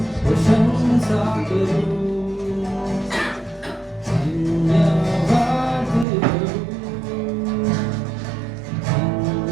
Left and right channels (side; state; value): left; drops out; at 6.1 s